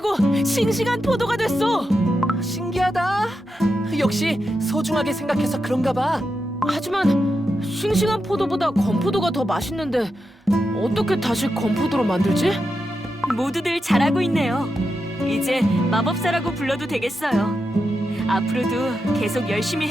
싱싱한 포도가 됐어. 신기하다. 역시 소중하게 생각해서 그런가 봐. 하지만 싱싱한 포도보다 건포도가 더 맛있는데 어떻게 다시 건포도로 만들지? 모두들 잘하고 있네요. 이제 마법사라고 불러도 되겠어요. 앞으로도 계속 열심히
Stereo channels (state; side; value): normal; both; correlation 0.87